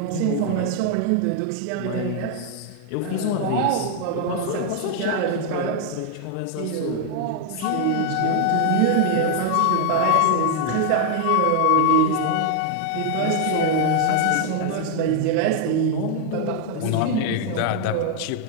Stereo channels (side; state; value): both; different; correlation 0.00